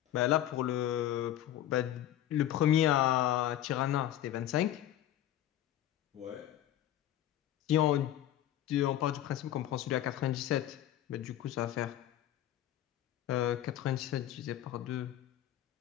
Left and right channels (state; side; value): quieter; right; 12.3 dB